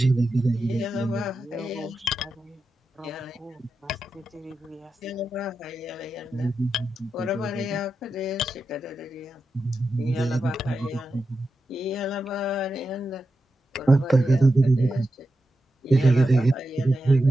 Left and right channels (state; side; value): normal; both; correlation 0.89